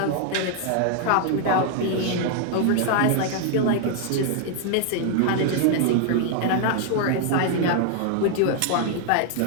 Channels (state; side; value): different; both; correlation 0.00